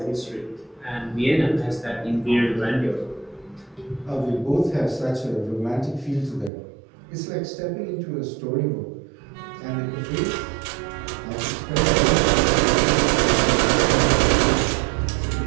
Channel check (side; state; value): left; drops out; at 6.5 s